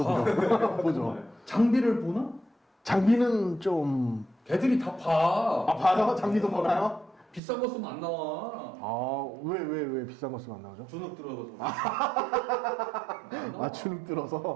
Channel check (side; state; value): left; drops out; at 7.4 s